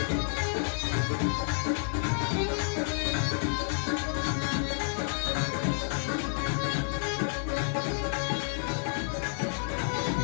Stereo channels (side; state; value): right; silent; digital silence